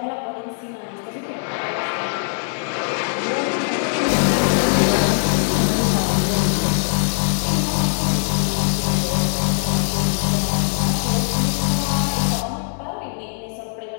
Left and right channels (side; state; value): right; silent; digital silence